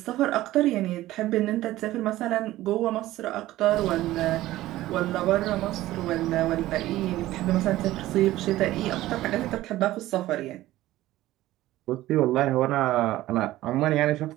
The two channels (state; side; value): quieter; left; 15.9 dB